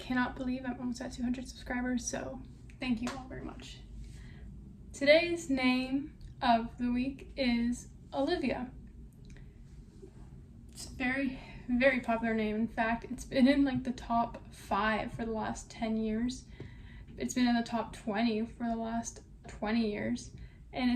believe I'm almost at 200 subscribers, so thank you all very much. Today's name of the week is Olivia. It's a very, very popular name. In fact, it's been in like the top 5 for the last 10 years. It's been in the top 20 for the last 20 years. And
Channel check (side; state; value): both; identical; correlation 1.00